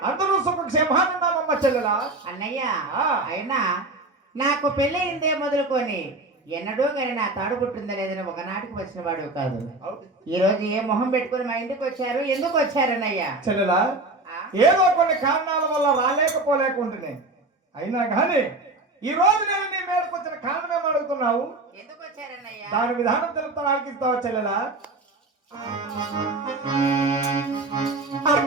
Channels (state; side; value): quieter; left; 3.0 dB